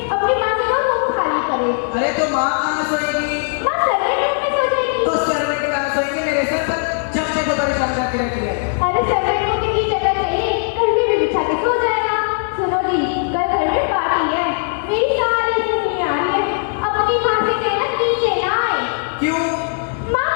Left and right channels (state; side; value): silent; right; digital silence